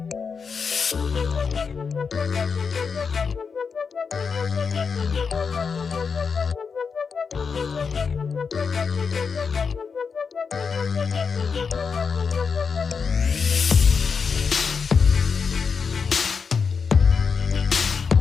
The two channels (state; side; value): quieter; right; 5.6 dB